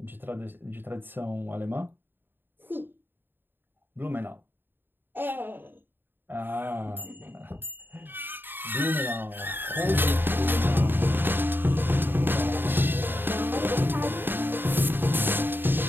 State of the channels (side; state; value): left; late; 0.096 ms